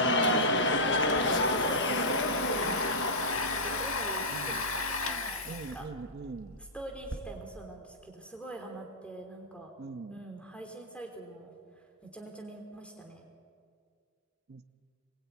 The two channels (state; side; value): normal; both; correlation -0.14